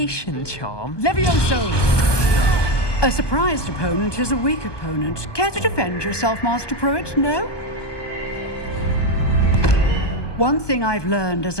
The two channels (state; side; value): late; right; 1.2 ms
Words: A surprised opponent is a weak opponent. Care to defend yourself, Master Pruitt? No? One thing I've learned as